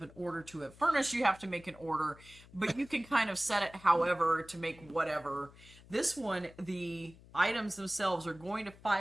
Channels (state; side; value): noise; left; hum, 22 dB below the sound